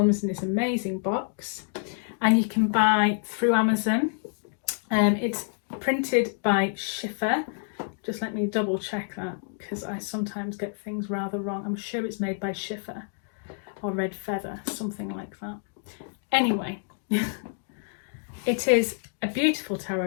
in this amazing box. And you can buy through Amazon. It's printed by Schiffer. Just let me double check that because I sometimes get things rather wrong. I'm sure it's made by Schiffer or Red Feather, something like that. Anyway, it is a beautiful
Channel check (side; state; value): right; silent; 60 dB below the other